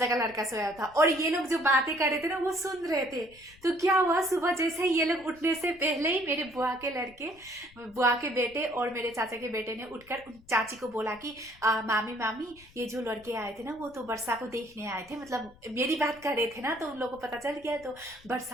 का लड़का सोया था। और ये लोग जो बातें कर रहे थे ना, वो सुन रहे थे। तो क्या हुआ, सुबह जैसे ही ये लोग उठने से पहले ही मेरे बुआ के लड़के, बुआ के बेटे और मेरे चाचा के बेटे ने उठकर उन चाची को बोला कि मामी मामी, ये जो लड़के आए थे ना, वो तो वर्षा को देखने आए थे, मतलब मेरी बात कर रहे थे ना, तो उन लोगों को पता चल गया, तो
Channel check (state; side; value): noise; left; rumble, 25 dB below the sound